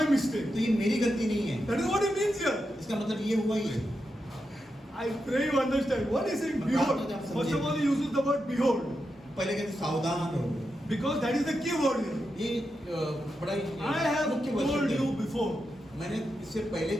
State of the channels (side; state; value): both; normal; correlation 0.87